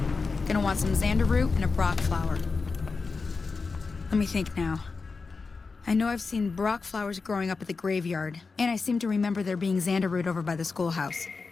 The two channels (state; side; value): quieter; right; 4.4 dB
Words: Gonna want some xander root and a brock flower. Let me think now. I I know I've seen Brock flowers growing up at the graveyard, and I seem to remember there being Xander root over by the schoolhouse.